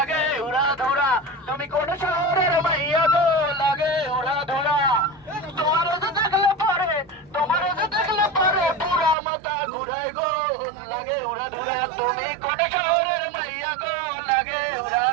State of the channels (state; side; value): drops out; left; at 9.2 s